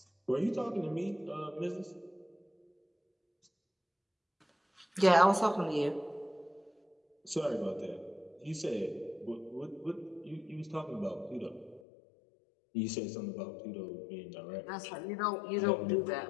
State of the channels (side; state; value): right; drops out; at 11.8 s